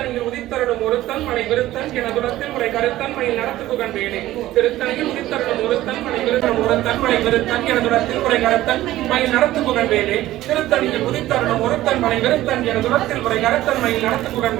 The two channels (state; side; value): quieter; left; 15.3 dB